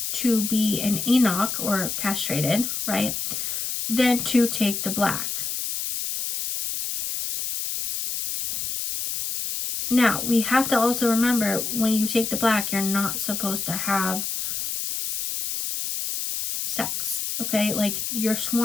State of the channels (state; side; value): noise; left; hiss, 3 dB below the sound